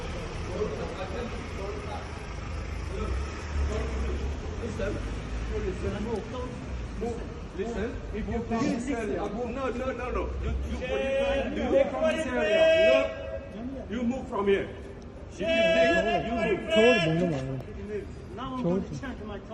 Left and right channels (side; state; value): both; identical; correlation 1.00